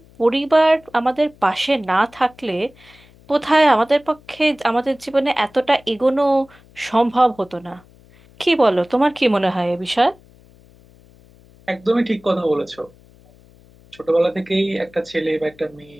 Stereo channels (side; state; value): left; noise; hum, 27 dB below the sound